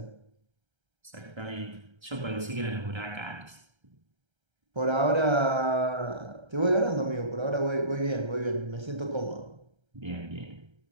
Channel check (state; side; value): late; left; 1.3 ms